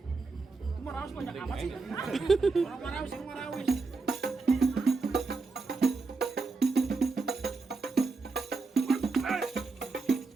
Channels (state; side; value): quieter; left; 4.0 dB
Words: Itu Marawis banyak amat sih. Orang Marawis yang Marawis.